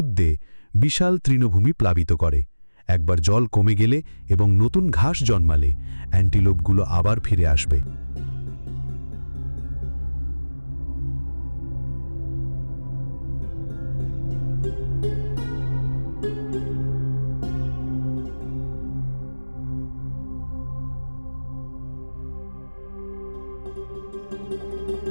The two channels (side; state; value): both; inverted; correlation -1.00